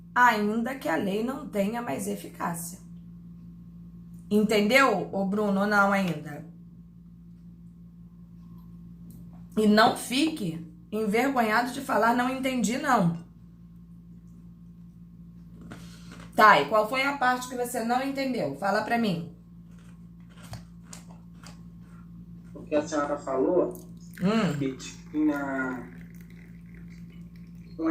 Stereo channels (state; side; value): identical; both; correlation 1.00